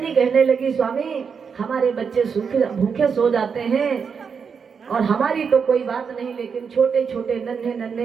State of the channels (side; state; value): left; quieter; 6.2 dB